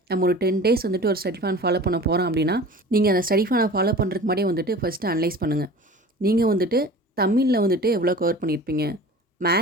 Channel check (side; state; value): both; normal; correlation 0.40